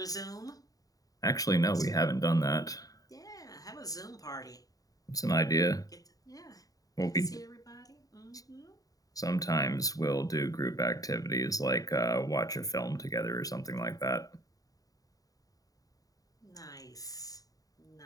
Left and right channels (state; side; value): late; right; 0.18 ms